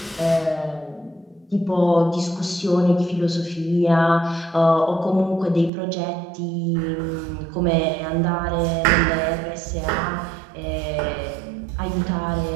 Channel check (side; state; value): left; drops out; at 5.7 s